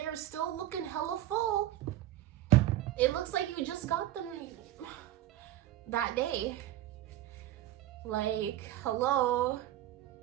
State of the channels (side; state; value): left; quieter; 13.9 dB